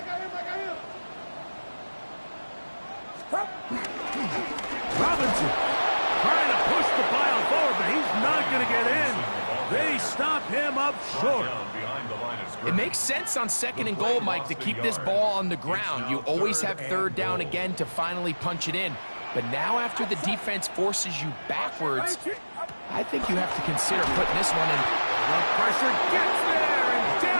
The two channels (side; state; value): both; inverted; correlation -1.00